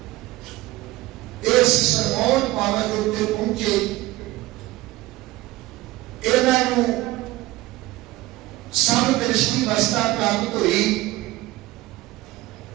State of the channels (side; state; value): left; quieter; 18.2 dB